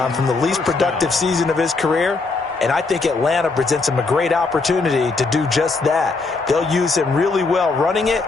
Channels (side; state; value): right; quieter; 3.9 dB